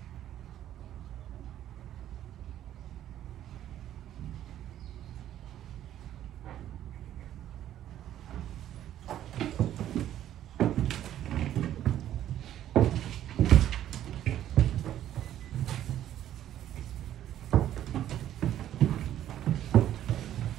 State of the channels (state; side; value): quieter; left; 11.8 dB